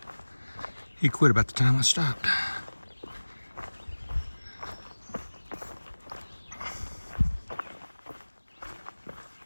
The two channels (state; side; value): inverted; both; correlation -1.00